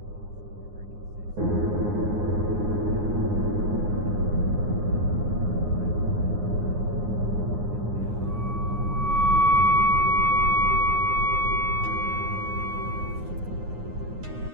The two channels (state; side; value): late; left; 9.6 ms